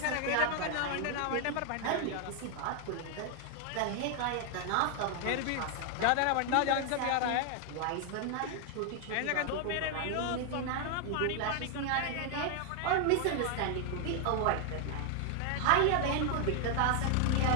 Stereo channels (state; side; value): different; both; correlation 0.00